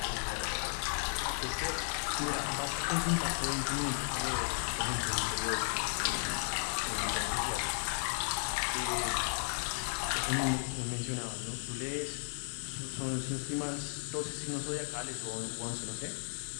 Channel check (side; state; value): right; silent; digital silence